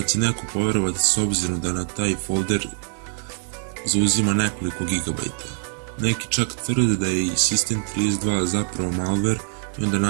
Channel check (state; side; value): silent; left; digital silence